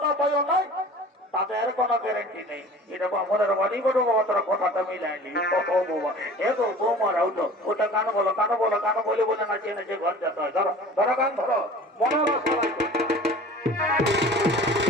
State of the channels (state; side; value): normal; both; correlation 0.43